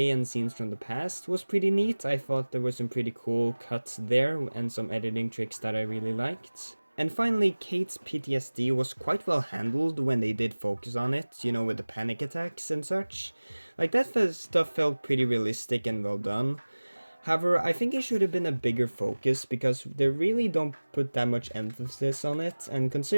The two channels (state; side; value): inverted; both; correlation -1.00